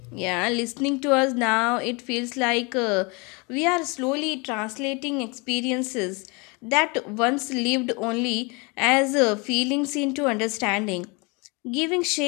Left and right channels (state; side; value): quieter; right; 29.2 dB